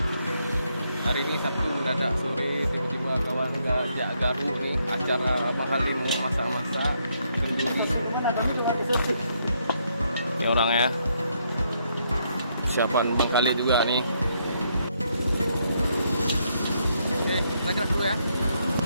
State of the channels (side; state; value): both; inverted; correlation -0.75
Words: Hari ini Sabtu mendadak sore tiba-tiba kawan ngajak garu nih acara mahalin masak-masak kenduri. Ini orang ya. Persiapan Bang Khalid juga nih. Oke, kita gerak dulu ya.